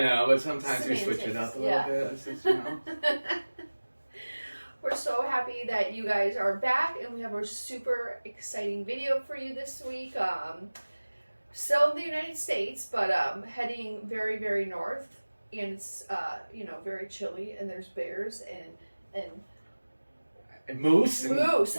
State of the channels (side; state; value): both; inverted; correlation -1.00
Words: but sometimes Semantics, we switch it up a little bit. It's just, you know. We're so happy that you guys are back and we have a super exciting video for you this week. Still in the United States, but heading very, very north. And it's, very chilly and there's bears and moose? Moose,